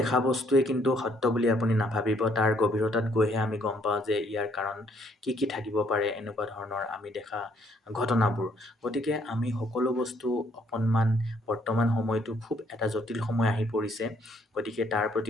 বস্তুৱে কিন্তু সত্য বুলি আপুনি নাভাবিব। তাৰ গভীৰতাত গৈহে আমি গম পাওঁ যে ইয়াৰ কাৰণ কি কি থাকিব পাৰে, এনেকুৱা ধৰণৰ আমি দেখা ঘটনাবোৰ। গতিকে আমি সকলো বস্তু অকণমান, বৰ্তমান সময়টো খুব এটা জটিল সময় আহি পৰিছে। গতিকে তাৰ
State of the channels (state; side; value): normal; both; correlation 0.67